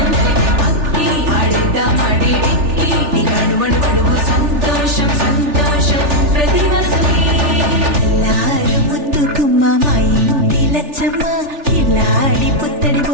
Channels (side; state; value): left; late; 3.4 ms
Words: అక్కి ఆడిద్దాం ఆడిడిక్కి ఇక అడుగడుగడుగు సంతోషం సంతోషం ప్రతి మనసుకి ఎల్లారు ముద్దు గుమ్మ మా ఇంటి లచ్చమ్మ ఇల్లాడి పుత్తడి